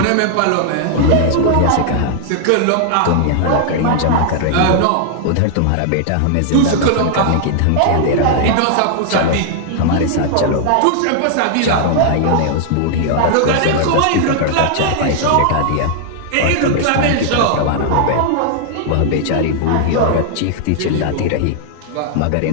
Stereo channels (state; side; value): different; both; correlation -0.01